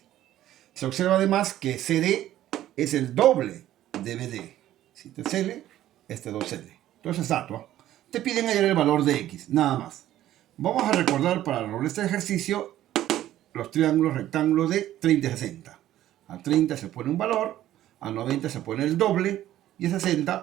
Se observa además que CD es el doble de BD. Si te CL, este 2L. Entonces, estatua. Te piden hallar el valor de X, nada más. Vamos a recordar para resolver este ejercicio los triángulos rectángulos de 30 y 60. A 30 se pone un valor, a 90 se pone el doble y a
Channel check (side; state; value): left; quieter; 13.2 dB